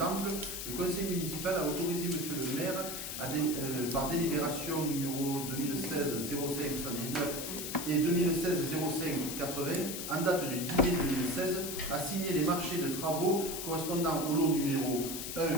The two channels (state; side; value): noise; left; hiss, 6 dB below the sound